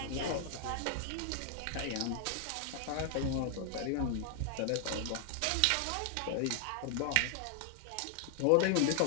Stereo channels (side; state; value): both; different; correlation 0.00